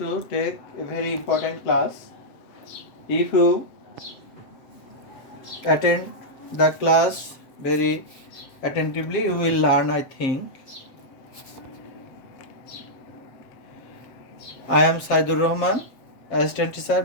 take a very important class. If you attend the class very attentively, you will learn, I think. I am Saidur Rahman, Assistant Teacher,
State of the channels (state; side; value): late; right; 7.8 ms